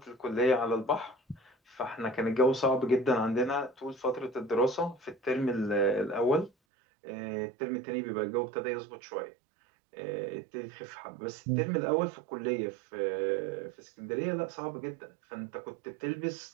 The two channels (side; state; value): left; drops out; at 6.5 s